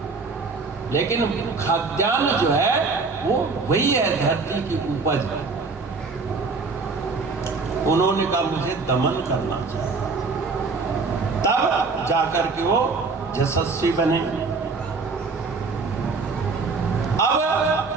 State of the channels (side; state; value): left; quieter; 4.2 dB